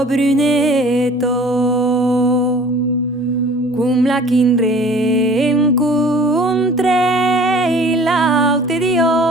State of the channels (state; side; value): normal; both; correlation 0.49